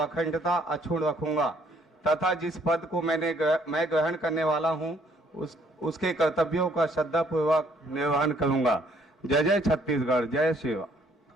अखंडता अक्षुण्ण रखूंगा तथा जिस पद को मैं ग्रहण करने वाला हूँ उसके कर्तव्यों का श्रद्धापूर्वक निर्वहन करूंगा। जय जय छत्तीसगढ़, जय श्री राम।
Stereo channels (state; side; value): normal; both; correlation 0.65